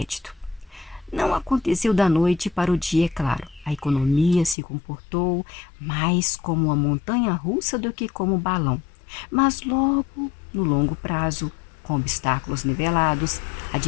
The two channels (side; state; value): right; drops out; at 4.5 s